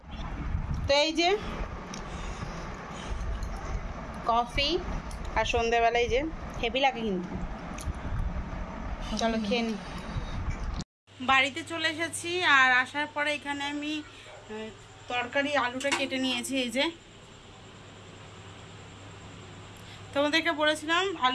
তো এই যে কফি আর সন্ধ্যেবেলায় যে হেভি লাগে কিন্তু, চলো খেয়ে নি। বাড়িতে চলে এসেছি, আর আসার পরে এখানে আমি তরকারি আলুটা কেটে নিয়েছি। এই যে তোমাদেরকে বলেছিলাম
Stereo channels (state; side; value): identical; both; correlation 1.00